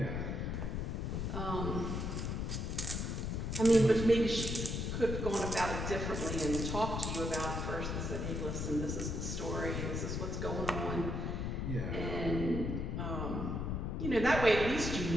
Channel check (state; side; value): noise; left; rumble, 2 dB below the sound